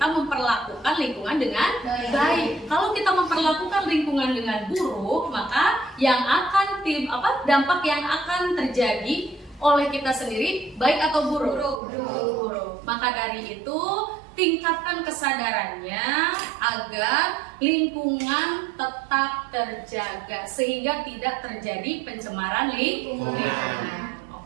memperlakukan lingkungan dengan baik. Kalau kita memperlakukan lingkungan dengan buruk, maka yang akan dampak yang akan terjadi oleh kita sendiri baik atau buruk? Buruk. Maka dari itu tingkatkan kesadarannya agar lingkungan tetap terjaga sehingga tidak terjadi pencemaran lingkungan.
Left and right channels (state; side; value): drops out; left; at 11.8 s